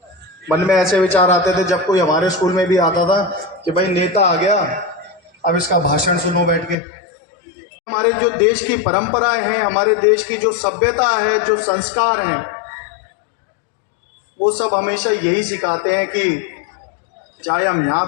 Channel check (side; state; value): right; drops out; at 6.8 s